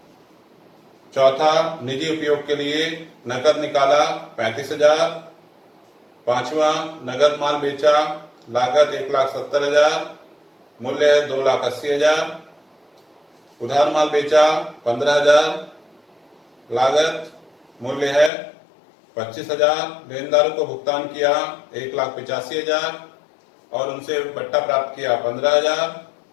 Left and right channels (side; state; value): right; drops out; at 18.3 s